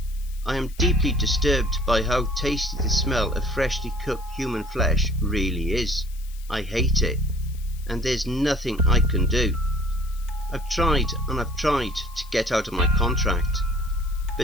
I am deeply disturbed by how tasty the smell of freshly cooked human flesh really is. I hate it, and there's nothing I can do. I've tried and I've tried to get out of my contract,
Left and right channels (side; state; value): left; noise; hiss, 22 dB below the sound